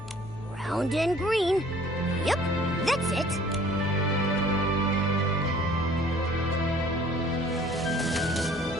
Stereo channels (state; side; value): normal; both; correlation 0.53